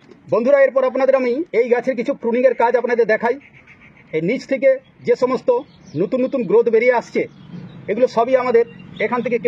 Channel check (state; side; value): identical; both; correlation 1.00